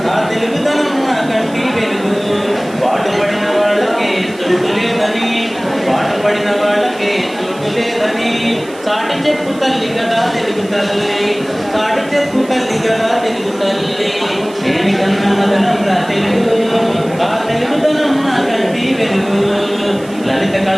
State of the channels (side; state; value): right; noise; hiss, 21 dB below the sound